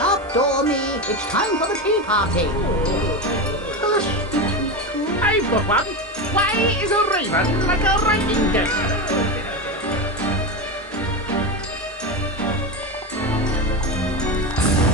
Dormy. It's time for the tea party. I've got one. Why is a raven like a writing desk?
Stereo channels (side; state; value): both; normal; correlation 0.18